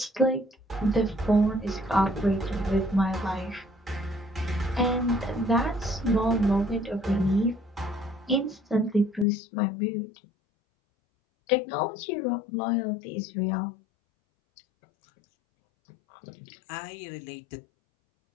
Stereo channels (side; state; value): right; drops out; at 9.2 s